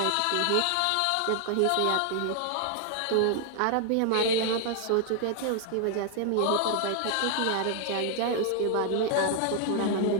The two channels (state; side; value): different; both; correlation 0.00